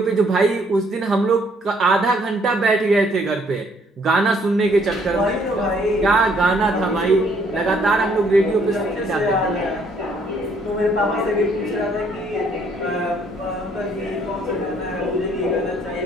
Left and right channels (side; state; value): both; normal; correlation 0.65